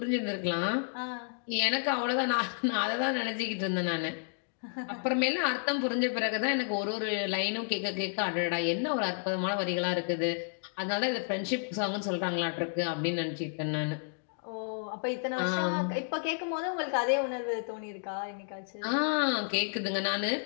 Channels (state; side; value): silent; right; digital silence